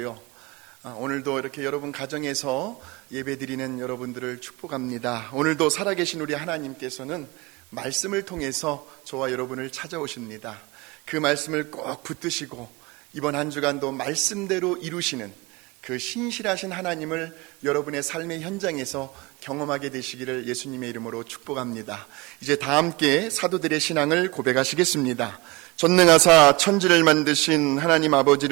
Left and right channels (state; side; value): quieter; left; 24.3 dB